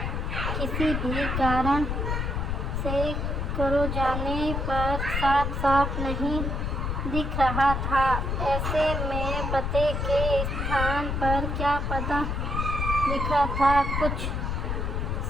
किसी भी कारण से करो जाने पर साफ साफ नहीं दिख रहा था। ऐसे में पते के स्थान पर क्या पता लिखा था, कुछ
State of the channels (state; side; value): noise; left; rumble, 1 dB below the sound